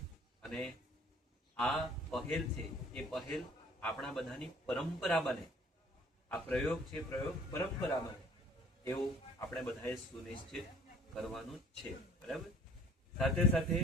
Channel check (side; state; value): both; normal; correlation 0.54